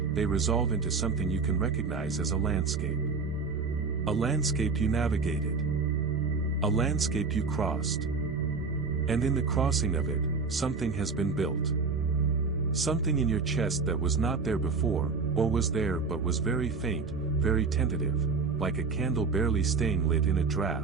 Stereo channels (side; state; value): left; quieter; 4.6 dB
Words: they resolve into something you can recognize as a landscape. A landscape you navigated. A landscape you crossed. And in the crossing of it, something has been built. Something in your chest that was not there before, or was there but was very faint, very tentative, like a candle barely staying lit in a